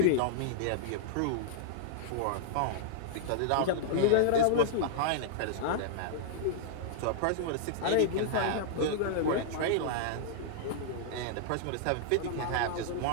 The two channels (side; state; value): both; different; correlation -0.01